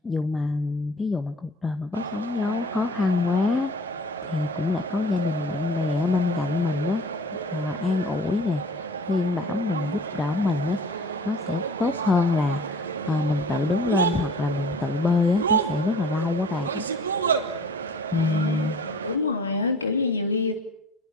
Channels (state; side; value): normal; both; correlation 0.46